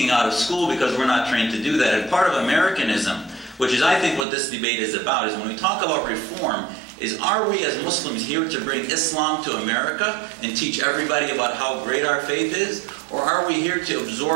out of school because we're not trained to do that. And part of Americanism, which is I think what this debate is about, is when we talk about reform, is are we as Muslims here to bring Islam to America and teach everybody about how great our faith is? Or are we here to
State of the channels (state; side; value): drops out; left; at 4.2 s